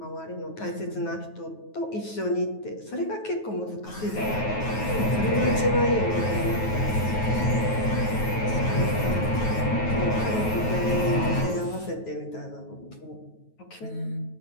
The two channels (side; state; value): right; late; 9.3 ms